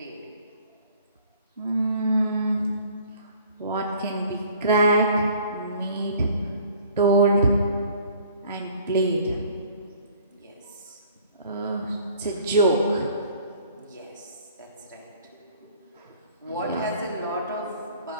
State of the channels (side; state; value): both; inverted; correlation -0.54